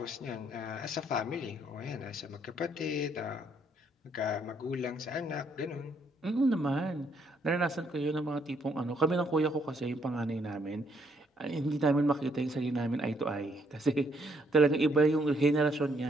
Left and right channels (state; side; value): normal; both; correlation 0.70